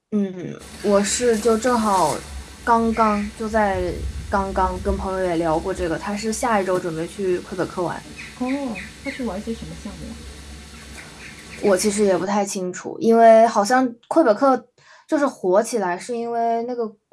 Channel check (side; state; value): both; identical; correlation 1.00